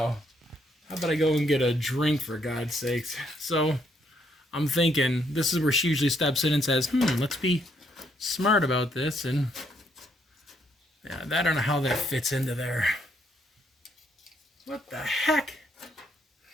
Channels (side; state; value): both; normal; correlation 0.72